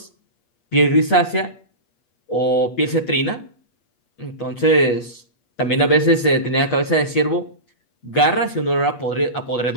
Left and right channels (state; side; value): late; right; 8.3 ms